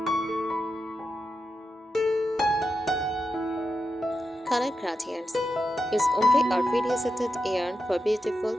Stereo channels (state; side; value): normal; both; correlation 0.87